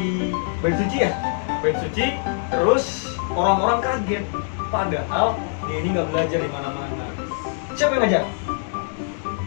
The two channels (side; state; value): right; silent; digital silence